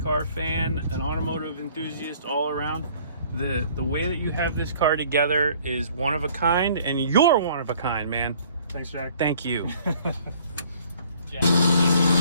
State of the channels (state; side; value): inverted; both; correlation -0.56